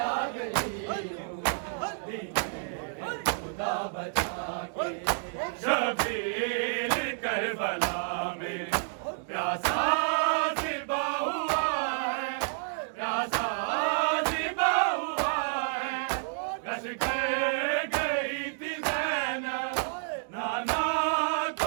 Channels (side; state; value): left; silent; digital silence